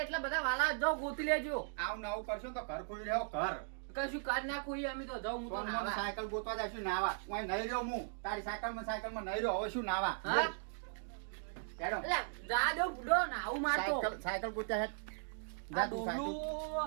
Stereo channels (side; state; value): left; silent; digital silence